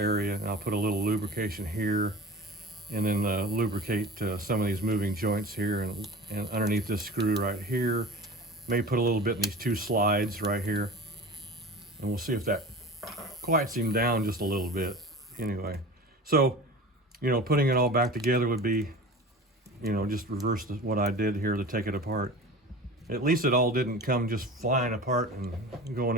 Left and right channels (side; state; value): both; normal; correlation 0.36